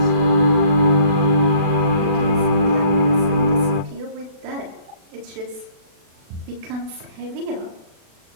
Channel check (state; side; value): late; left; 36 ms